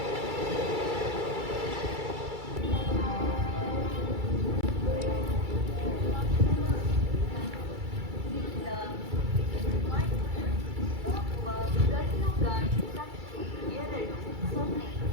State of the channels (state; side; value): late; left; 2.3 ms